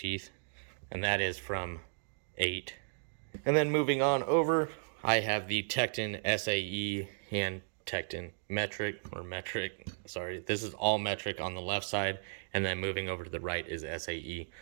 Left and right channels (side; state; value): left; silent; digital silence